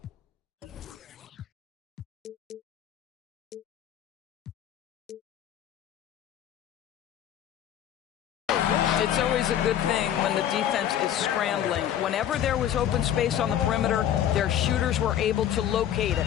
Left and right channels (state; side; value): quieter; right; 10.5 dB